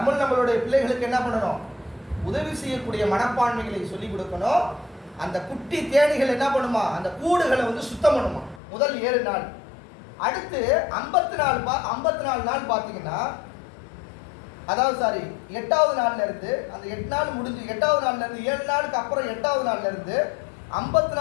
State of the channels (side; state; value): right; drops out; at 8.6 s